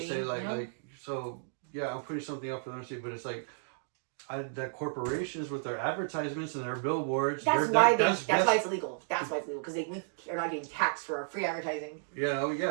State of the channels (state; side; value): silent; left; digital silence